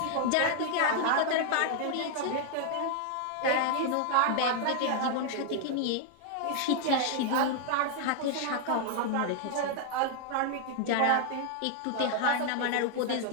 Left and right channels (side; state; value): both; different; correlation 0.00